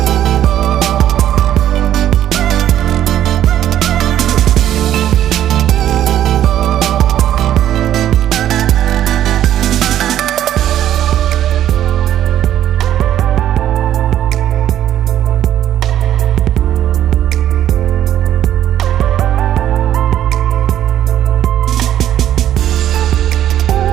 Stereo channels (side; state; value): left; quieter; 11.5 dB